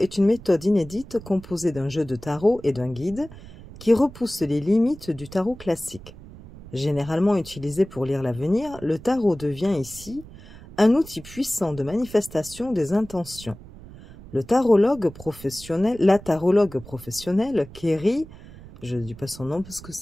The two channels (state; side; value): noise; right; rumble, 18 dB below the sound